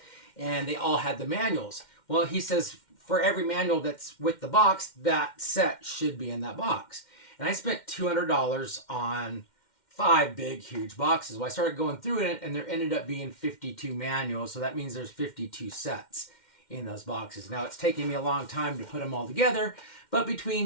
and they all had the manuals. Well, he says for every manual that's with the box, that set should be in that box. And I spent $200 on 5 big, huge boxes. Well, I started going through it, and there ended up being 52 manuals, so that means there's 52 sets in those boxes. Now, it's taking me a long time to put them all together, but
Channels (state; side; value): late; right; 2.1 ms